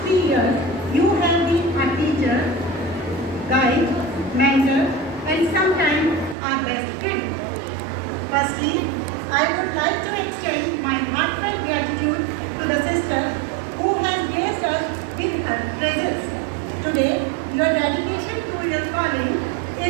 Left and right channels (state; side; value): drops out; left; at 6.4 s